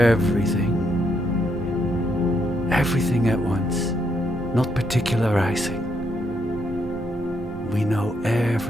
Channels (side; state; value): both; normal; correlation 0.76